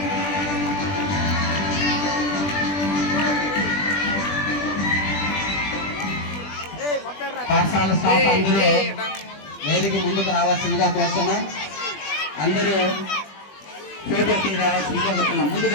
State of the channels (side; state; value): right; late; 20 ms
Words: పాఠశాల స్టాఫ్ అందరూ వేదిక ముందుకు రావాల్సిందిగా కోరుతున్నాం. అందరూ ఫోటో తీ రావాల్సిందిగా కోరుతున్నాం. ముందుకు